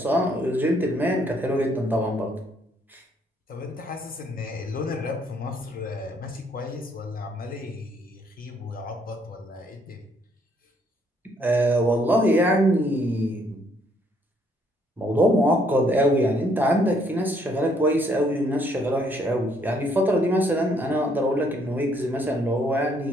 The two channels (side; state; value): both; normal; correlation 0.68